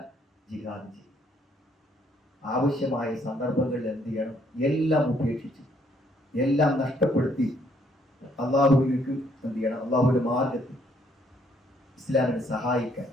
ജിഹാദ് ചെയ്യും. ആവശ്യമായ സന്ദർഭങ്ങളിൽ എന്ത് ചെയ്യണം? എല്ലാം ഉപേക്ഷിച്ച്, എല്ലാം നഷ്ടപ്പെടുത്തി അള്ളാഹുവിലേക്ക് എന്ത് ചെയ്യണം? അള്ളാഹുവിന്റെ മാർഗത്തിൽ ഇസ്ലാമിനെ സഹായിക്കാൻ,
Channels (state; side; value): normal; both; correlation 0.68